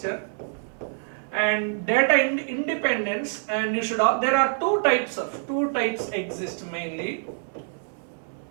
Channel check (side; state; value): left; silent; digital silence